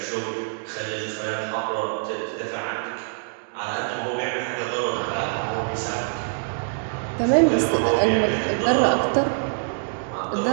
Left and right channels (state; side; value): silent; left; 62 dB below the other